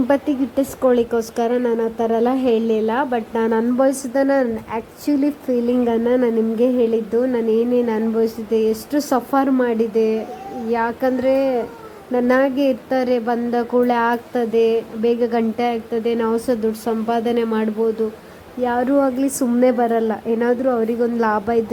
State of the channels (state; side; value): identical; both; correlation 1.00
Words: ಗಿಟ್ಟಿಸ್ಕೊಳ್ಳಿಕ್ಕೋಸ್ಕರ ನಾನು ಆ ಥರ ಎಲ್ಲ ಹೇಳಲಿಲ್ಲ, ಬಟ್ ನಾನು ಅನುಭವಿಸಿದ್ದನ್ನು, ಆ್ಯಕ್ಚುಲಿ ಫೀಲಿಂಗನ್ನು ನಾನು ನಿಮಗೆ ಹೇಳಿದ್ದು. ನಾನು ಏನೇನು ಅನುಭವಿಸಿದ್ದೆ, ಎಷ್ಟು ಸಫರ್ ಮಾಡಿದೆ. ಯಾಕಂದರೆ ನನ್ನಾಗೆ ಇರ್ತಾರೆ, ಬಂದ ಕೂಡಲೇ ಆಗ್ತದೆ, ಬೇಗ ಗಂಟೆ ಆಗ್ತದೆ, ನಾವು ಸಹ ದುಡ್ಡು ಸಂಪಾದನೆ ಮಾಡ್ಬೋದು. ಯಾರೂ ಆಗಲಿ ಸುಮ್ಮನೆ ಬರಲ್ಲ, ಏನಾದರೂ ಅವರಿಗೊಂದು ಲಾಭ